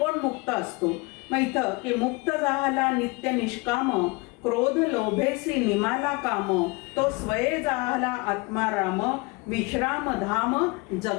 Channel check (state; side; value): quieter; right; 26.3 dB